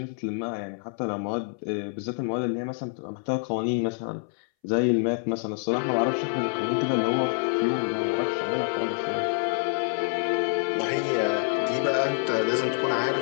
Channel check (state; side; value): silent; right; 60 dB below the other